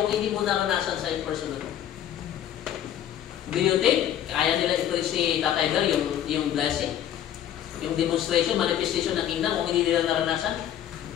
hindi mo naranasan sa personal. Do you think kaya nila i-preach si Tatay Gar yung blessing? yung demonstration, manifestation ng kingdom kung hindi nila naranasan?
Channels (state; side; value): quieter; right; 10.7 dB